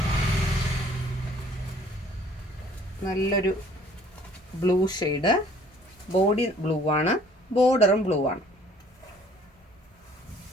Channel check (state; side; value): normal; both; correlation 0.57